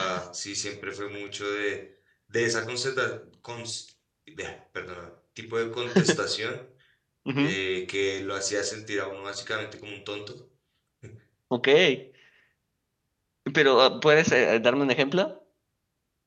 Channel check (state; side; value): identical; both; correlation 1.00